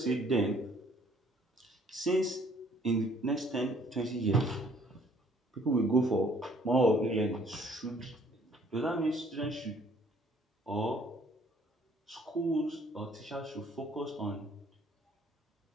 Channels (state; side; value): normal; both; correlation 0.60